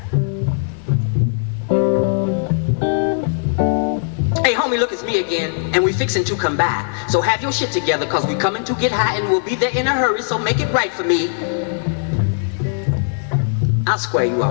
Hey homie, look, it's me again, and we fixing to come by. So have your shit together, cause we coming to get high and we'll be there in a hurry, so make it right for me. I'll square you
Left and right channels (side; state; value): right; silent; 59 dB below the other